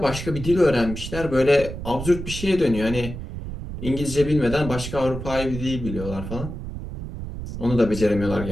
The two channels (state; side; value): noise; right; rumble, 8 dB below the sound